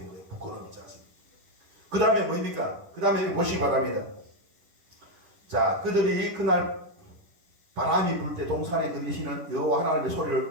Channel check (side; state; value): left; late; 10 ms